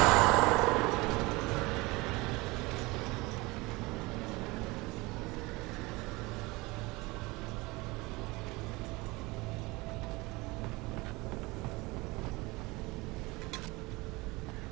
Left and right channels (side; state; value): left; quieter; 23.2 dB